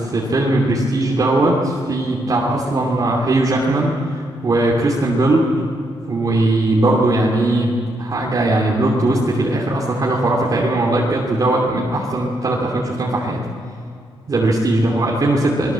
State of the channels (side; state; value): both; normal; correlation 0.77